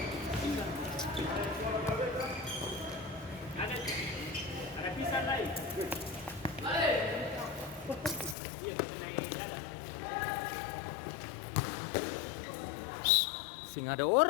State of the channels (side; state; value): right; drops out; at 8.3 s